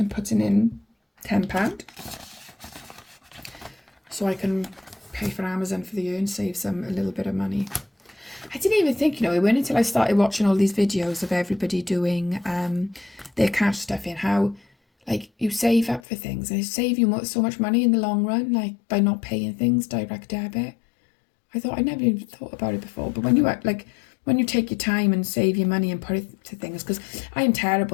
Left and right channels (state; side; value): drops out; right; at 16.0 s